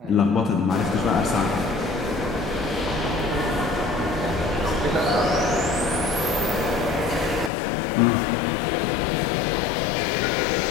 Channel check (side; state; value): right; drops out; at 7.5 s